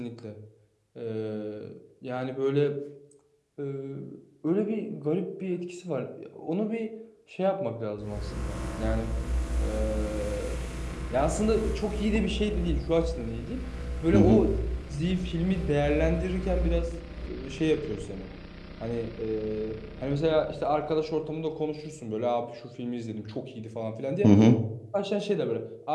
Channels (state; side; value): identical; both; correlation 1.00